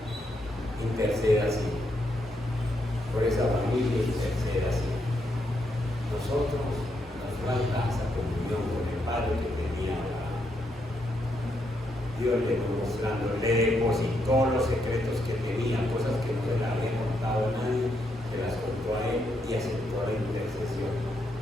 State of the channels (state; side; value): normal; both; correlation 0.79